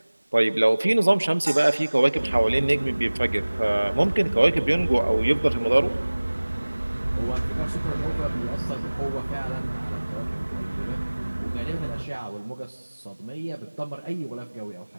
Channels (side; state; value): both; inverted; correlation -1.00